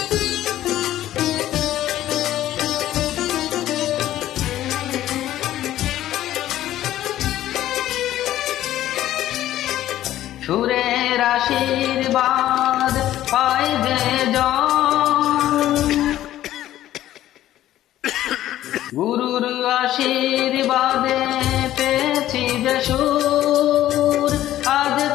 সুরের আশীর্বাদ পাই যে জন, গুরুর আশীর্বাদে পেয়েছি যে সুর, আজ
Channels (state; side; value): quieter; right; 13.4 dB